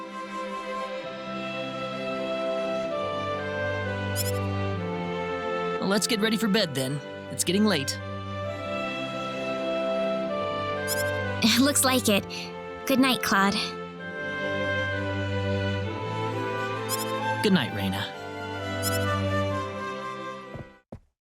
Well, let's get ready for bed then. It's getting late. Looks like it. Good night, Claude. Good night, Raina.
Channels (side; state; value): both; identical; correlation 1.00